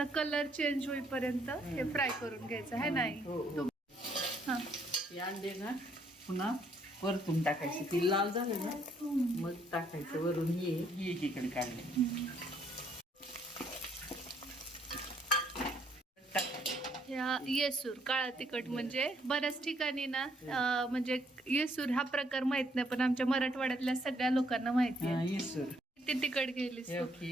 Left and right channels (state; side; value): normal; both; correlation 0.69